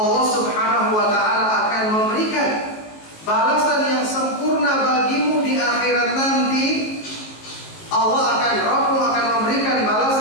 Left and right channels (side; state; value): right; late; 19 ms